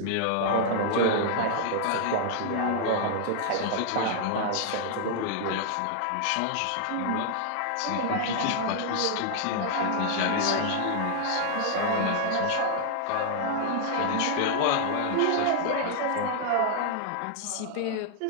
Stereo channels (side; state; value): both; different; correlation 0.00